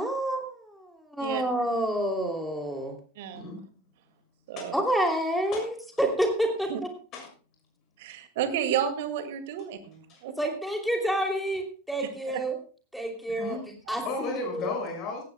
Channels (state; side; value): normal; both; correlation 0.49